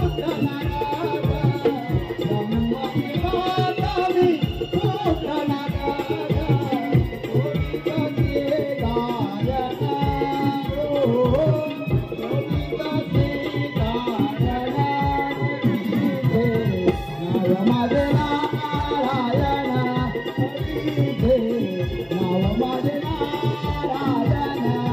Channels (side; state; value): both; identical; correlation 1.00